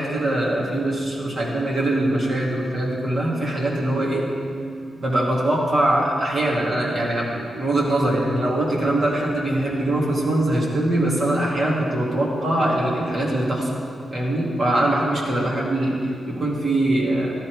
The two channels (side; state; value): both; normal; correlation 0.86